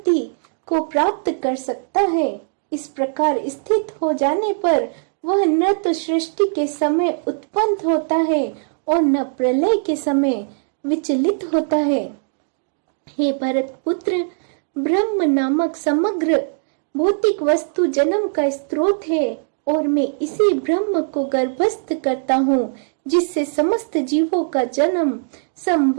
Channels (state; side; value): silent; left; digital silence